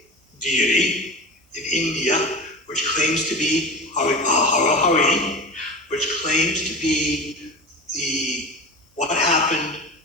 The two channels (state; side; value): normal; both; correlation 0.29